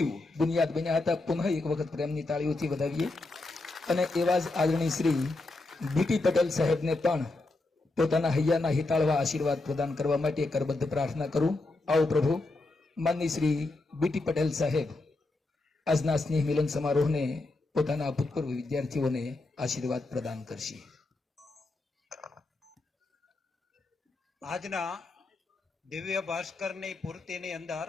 બુનિયાદ બન્યા હતા. પુનઃ એક વખત પ્રેમની તાળીઓથી વધાવીએ. અને એવા જ આદરણીય શ્રી બીટી પટેલ સાહેબને પણ પોતાના હૈયાના હિતાળવા આશીર્વાદ પ્રદાન કરવા માટે કરબદ્ધ પ્રાર્થના કરું. આવો પ્રભુ. માનનીય શ્રી બીટી પટેલ સાહેબ આજના સ્નેહ મિલન સમારોહને પોતાના ભૂતપૂર્વ વિદ્યાર્થીઓને આશીર્વાદ પ્રદાન કરશે. આજના દિવ્ય ભાસ્કરની પૂર્તિની અંદર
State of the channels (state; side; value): quieter; right; 3.1 dB